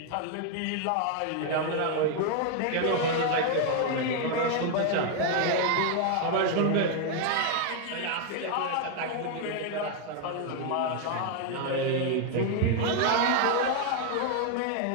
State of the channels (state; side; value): different; both; correlation 0.00